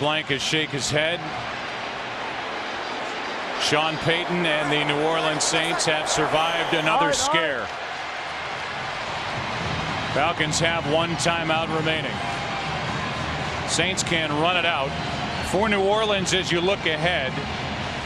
is shake his head. Sean Payton and the New Orleans Saints have survived another scare. Falcons have 1 timeout remaining. Saints can run it out. For New Orleans, as you look ahead,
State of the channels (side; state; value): both; identical; correlation 1.00